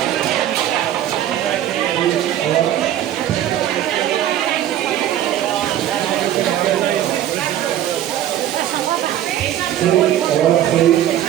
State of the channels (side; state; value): left; quieter; 11.9 dB